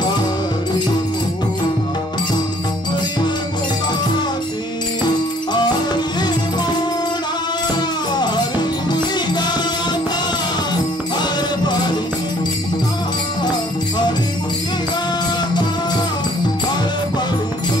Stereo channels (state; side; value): normal; both; correlation 0.59